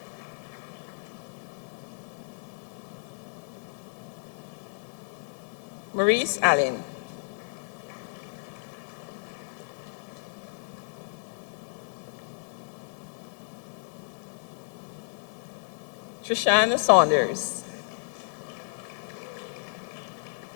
Maurice Allen. Trishana Saunders.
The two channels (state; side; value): silent; right; digital silence